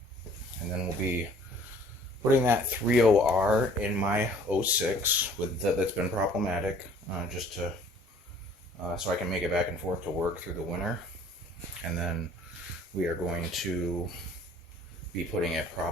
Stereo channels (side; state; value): both; normal; correlation 0.54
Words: And then we'll be putting that 30R in my 06 that's been problematic, just to so I can make it back and forth to work through the winter. And then we are going to be putting it